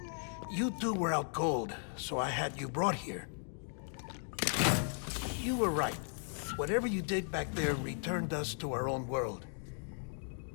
You two were out cold, so I had you brought here. You were right. Whatever you did back there returned us to our own world.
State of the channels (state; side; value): silent; right; 53 dB below the other